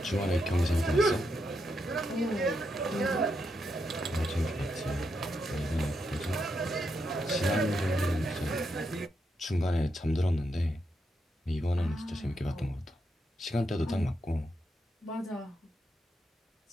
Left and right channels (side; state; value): both; normal; correlation 0.82